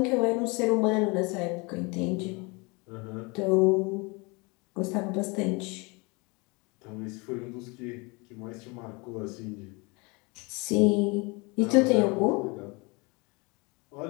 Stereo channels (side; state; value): right; quieter; 28.1 dB